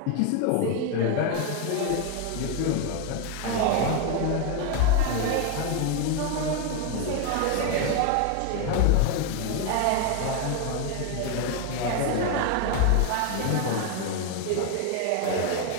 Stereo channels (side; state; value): both; different; correlation 0.01